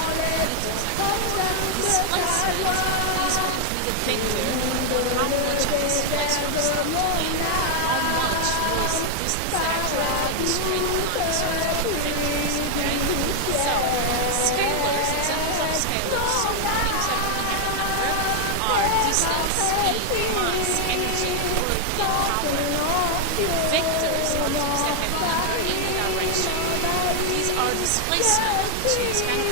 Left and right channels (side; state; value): both; different; correlation 0.00